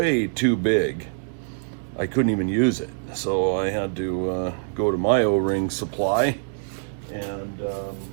too big. I couldn't even use it, so I had to go to my O-ring supply and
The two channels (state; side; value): silent; left; digital silence